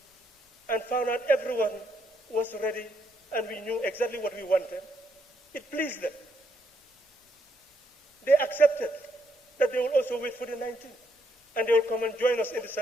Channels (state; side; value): normal; both; correlation 0.75